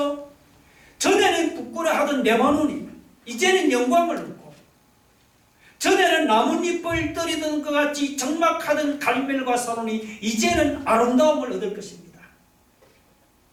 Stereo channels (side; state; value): both; identical; correlation 1.00